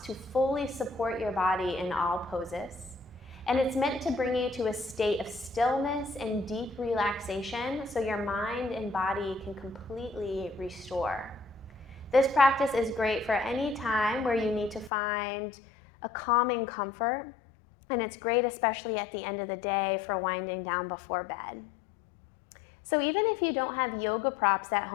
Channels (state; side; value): drops out; right; at 14.9 s